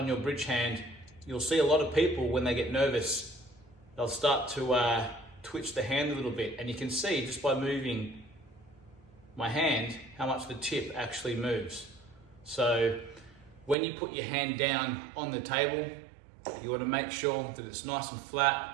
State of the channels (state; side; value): drops out; left; at 13.8 s